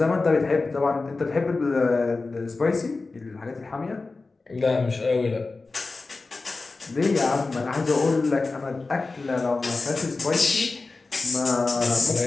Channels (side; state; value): right; quieter; 3.7 dB